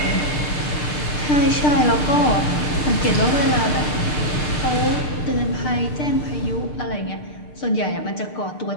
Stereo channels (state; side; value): late; right; 6.7 ms